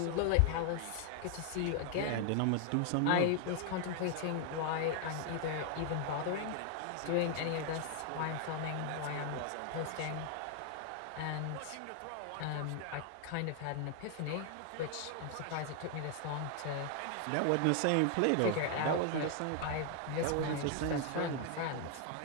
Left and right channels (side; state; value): both; different; correlation 0.00